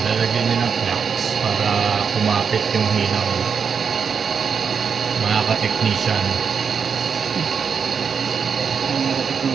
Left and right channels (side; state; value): left; quieter; 6.3 dB